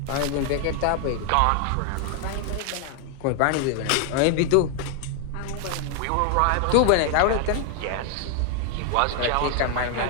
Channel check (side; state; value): both; different; correlation 0.00